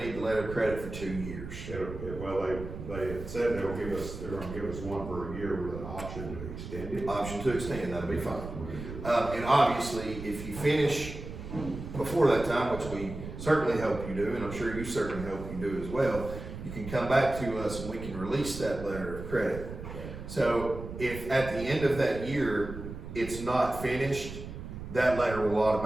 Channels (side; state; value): right; noise; rumble, 9 dB below the sound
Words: the letter of credit for 2 years. Well, they had said they're gonna give us one for a year with an option to extend it. Option to extend, that'll be fine. And obviously, if you finish before that time, which we certainly hope you do, and I'm sure you certainly hope you do as well, you can come back to us and we can release that letter of credit. So if at the end of that year, it's not finished, that letter